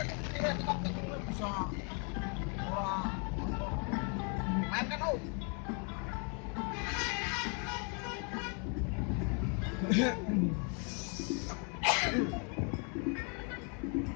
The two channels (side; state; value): right; quieter; 37.7 dB